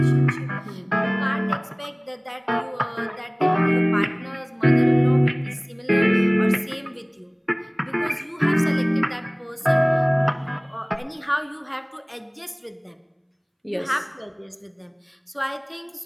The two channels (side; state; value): both; identical; correlation 1.00